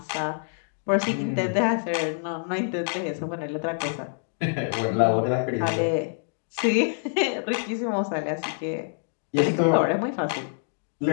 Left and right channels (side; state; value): right; silent; digital silence